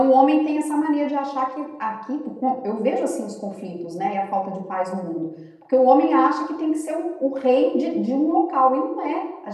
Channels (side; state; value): both; identical; correlation 1.00